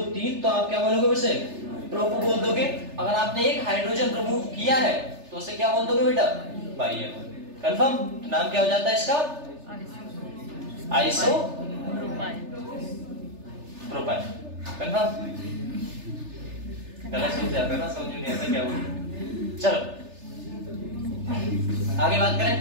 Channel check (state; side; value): late; left; 3.3 ms